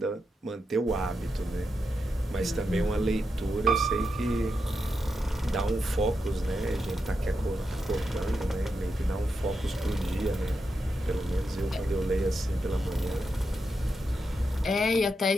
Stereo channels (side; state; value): both; normal; correlation 0.86